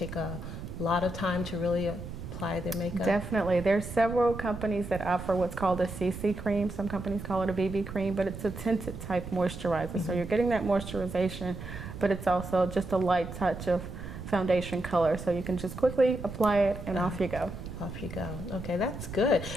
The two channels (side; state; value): right; noise; rumble, 10 dB below the sound